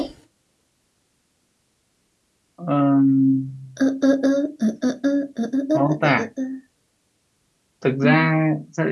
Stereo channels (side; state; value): both; identical; correlation 1.00